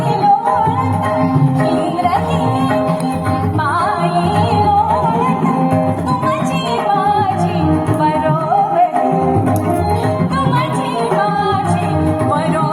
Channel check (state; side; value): identical; both; correlation 1.00